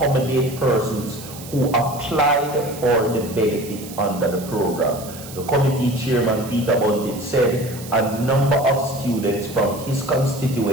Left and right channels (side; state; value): right; noise; hiss, 15 dB below the sound